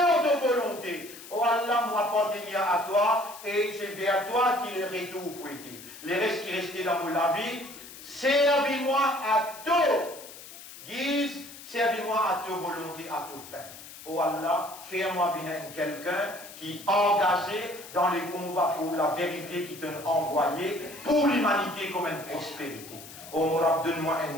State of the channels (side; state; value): left; noise; hiss, 16 dB below the sound